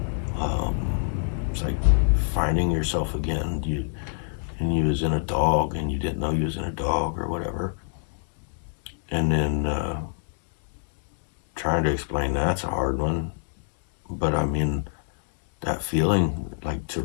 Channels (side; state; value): right; silent; digital silence